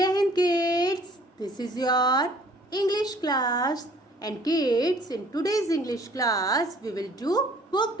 Hind kids, this is your English class and kids in today's English class we will do book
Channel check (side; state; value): both; normal; correlation 0.56